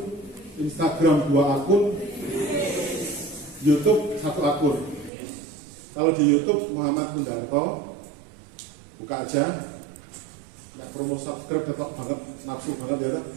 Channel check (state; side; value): drops out; left; at 5.1 s